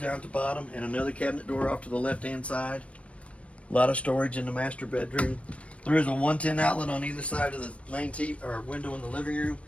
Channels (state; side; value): late; right; 0.063 ms